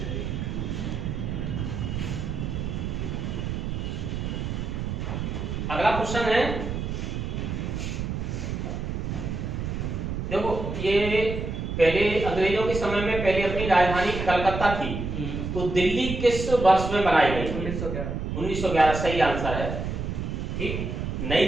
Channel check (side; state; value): right; noise; rumble, 4 dB below the sound